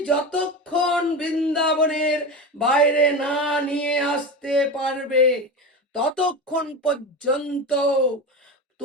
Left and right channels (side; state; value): both; normal; correlation 0.23